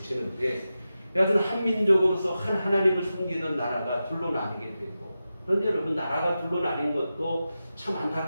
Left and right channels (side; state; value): both; inverted; correlation -0.92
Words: 여하튼 한민족으로서 한 하나님을 섬기던 나라가 둘로 나뉘게 되고, 그런데 여러분 나라가 둘로 나뉜 것도 참